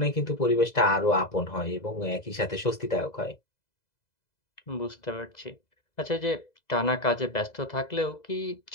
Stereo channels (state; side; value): late; right; 2.0 ms